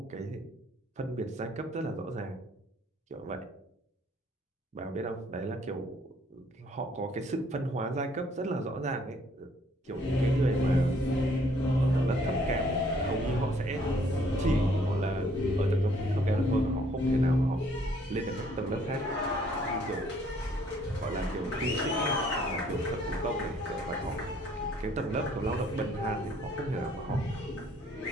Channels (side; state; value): both; normal; correlation 0.62